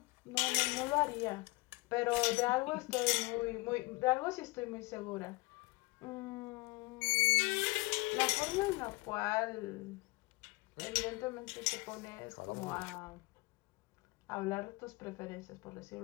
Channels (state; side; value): quieter; right; 24.2 dB